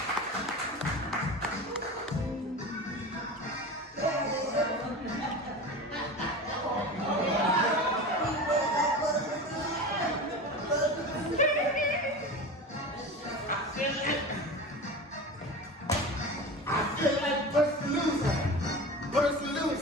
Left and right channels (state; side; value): normal; both; correlation 0.30